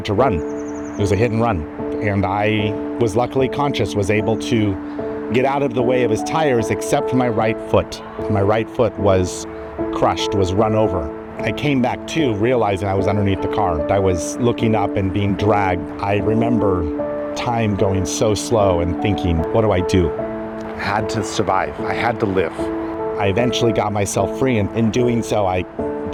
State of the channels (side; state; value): both; identical; correlation 1.00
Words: to run. It was a hit and run. And I was luckily conscious, was able to get out of the way of his tires except for my right foot. My right foot was crushed, was run over. I came back to realizing I was underneath the car. I was looking up and being dragged. I remember time going so slow and thinking, what do I do? I had to survive. I had to live. I eventually got myself free, and in doing so, I